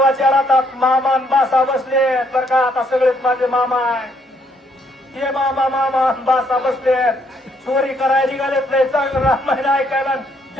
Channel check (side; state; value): both; normal; correlation 0.71